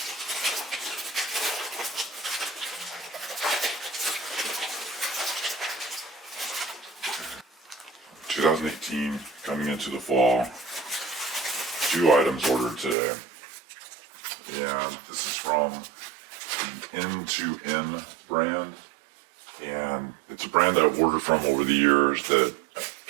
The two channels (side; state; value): left; drops out; at 13.0 s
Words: (2018) coming into the fall. 2 items ordered today. And this is from the N2N brand, and it's a brand that I've ordered from over the years that I